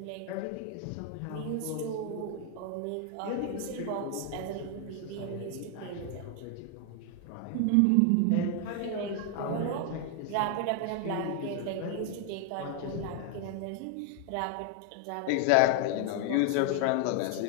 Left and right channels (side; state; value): both; different; correlation 0.00